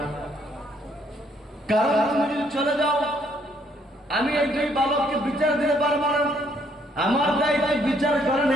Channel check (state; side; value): normal; both; correlation 0.68